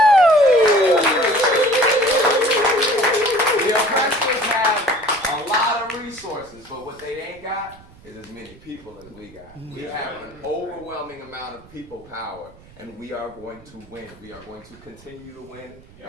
The oppressors have a lot of resources, but what they ain't got is as many people as we got. We have an overwhelming amount of people power, and we are going to win. We are going to continue to win,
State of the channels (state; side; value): noise; right; rumble, 24 dB below the sound